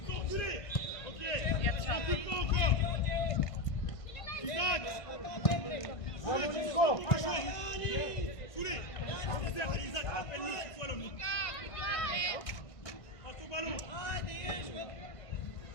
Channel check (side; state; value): right; late; 1.5 ms